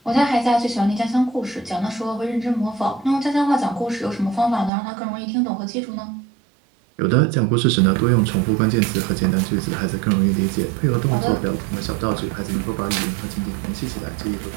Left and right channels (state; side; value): drops out; left; at 4.7 s